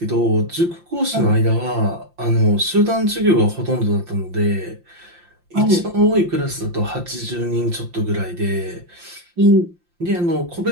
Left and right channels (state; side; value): late; left; 5.8 ms